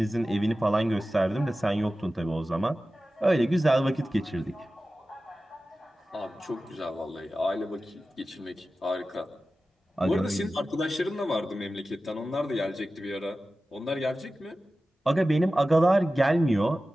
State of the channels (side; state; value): both; normal; correlation 0.95